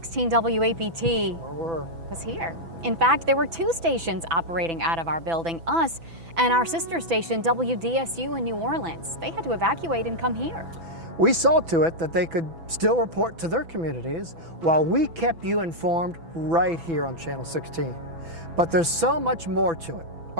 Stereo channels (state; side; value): late; left; 6.0 ms